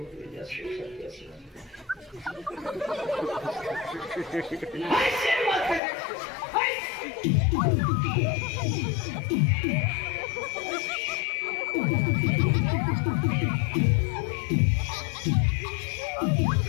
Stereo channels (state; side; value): drops out; right; at 5.8 s